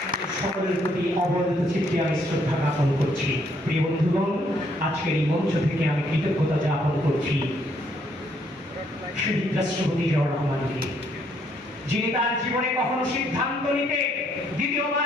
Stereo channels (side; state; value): both; normal; correlation 0.70